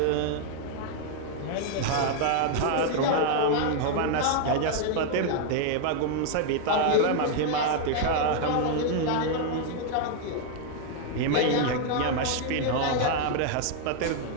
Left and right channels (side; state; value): both; different; correlation 0.00